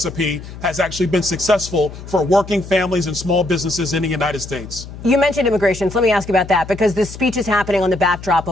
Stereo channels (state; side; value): noise; left; hum, 13 dB below the sound